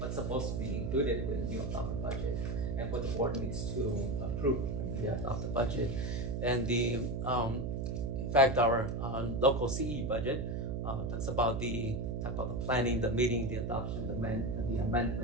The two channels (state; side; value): noise; right; hum, 2 dB below the sound